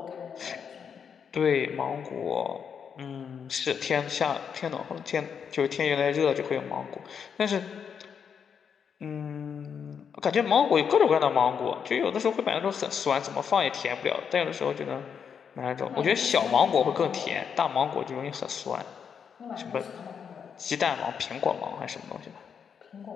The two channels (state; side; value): quieter; right; 7.1 dB